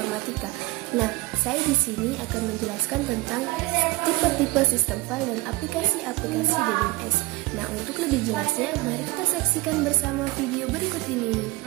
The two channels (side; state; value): left; quieter; 20.9 dB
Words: Nah, saya di sini akan menjelaskan tentang tipe-tipe sistem file dan aplikasi-aplikasi DBMS. Nah, untuk lebih jelasnya, mari kita saksikan bersama video berikut ini.